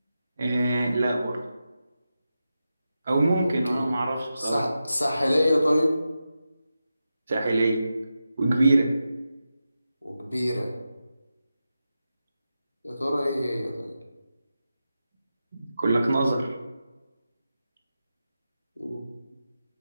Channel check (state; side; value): inverted; both; correlation -0.91